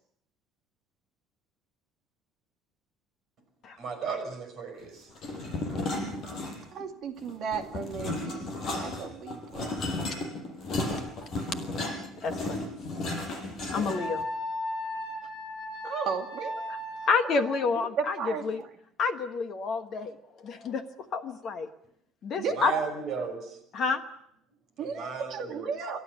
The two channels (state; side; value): normal; both; correlation 0.57